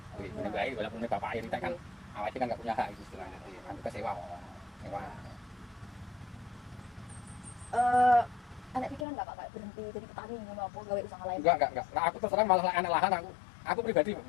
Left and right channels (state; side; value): drops out; right; at 9.1 s